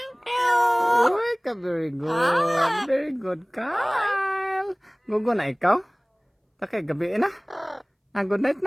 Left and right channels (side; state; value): both; identical; correlation 1.00